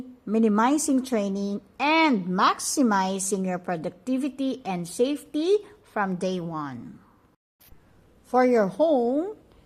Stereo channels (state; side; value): identical; both; correlation 1.00